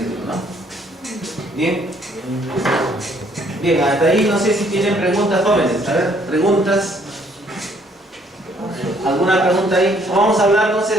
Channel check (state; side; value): normal; both; correlation 0.64